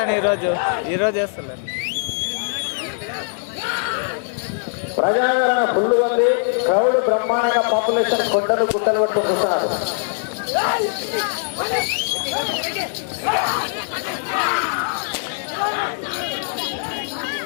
ఈరోజు వేస్తలే. ప్రజాదరణ ఫుల్ ఉంది. క్రౌడ్ బ్రహ్మాండంగా పాపులేషన్ కొండలు గుట్టలు పట్టుకుంటున్నారు.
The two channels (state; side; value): silent; right; 65 dB below the other